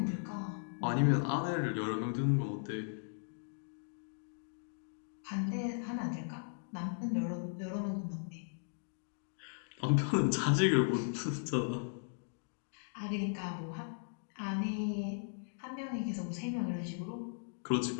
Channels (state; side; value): silent; right; digital silence